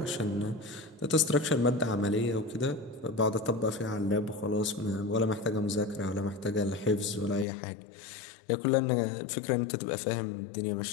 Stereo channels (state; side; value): drops out; right; at 7.5 s